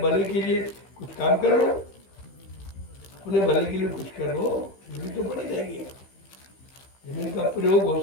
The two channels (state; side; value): late; right; 15 ms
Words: भले के लिए कुछ काम करो, अपने भले के लिए कुछ करो, जमीन तो बनी रहेगी। जमीन का प्रयोग हो